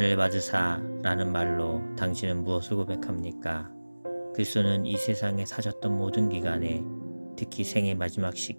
받으사 라는 말로 당신은 무엇을 고백합니까? 그리스도는 이 세상에 사셨던 모든 기간에 특히 생의 마지막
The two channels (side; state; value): both; inverted; correlation -1.00